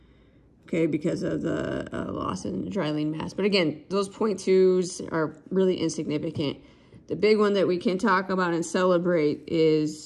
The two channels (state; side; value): identical; both; correlation 1.00